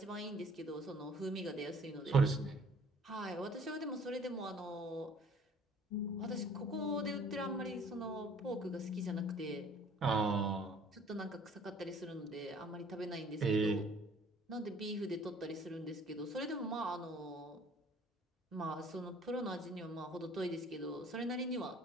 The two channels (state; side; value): normal; both; correlation 0.54